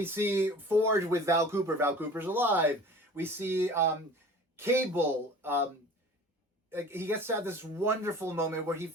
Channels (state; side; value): normal; both; correlation 0.43